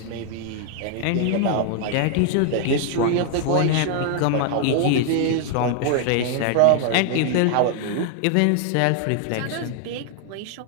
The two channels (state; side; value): different; both; correlation 0.00